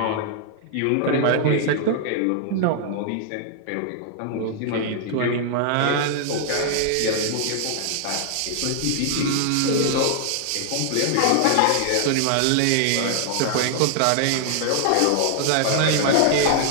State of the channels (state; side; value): different; both; correlation 0.00